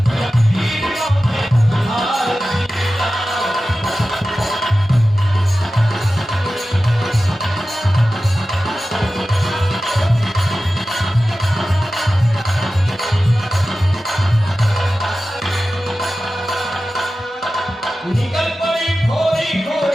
निकल पड़ी खोरी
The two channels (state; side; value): normal; both; correlation 0.94